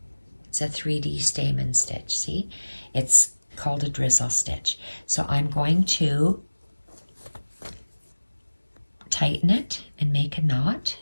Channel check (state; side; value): inverted; both; correlation -1.00